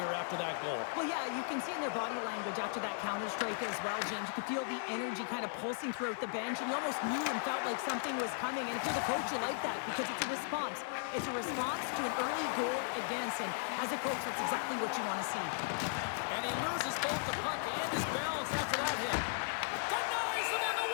after that goal. Well, yeah, you can see in their body language after that counter-strike as well, James. You could feel the energy kind of pulsing throughout the bench, and you almost knew and felt like something was coming. And if you're the coach, you like that because it's a response. It's a response to an early goal against, and as a coach, that's exactly what you want to see. And he loses both the puck and his balance after that hit. Denies him on the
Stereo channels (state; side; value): silent; right; digital silence